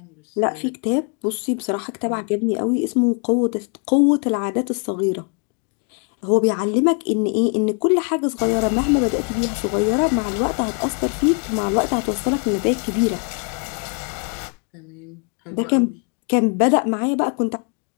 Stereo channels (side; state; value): right; quieter; 39.2 dB